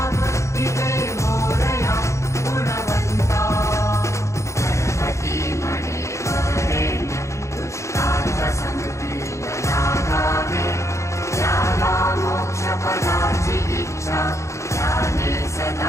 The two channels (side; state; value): right; late; 0.14 ms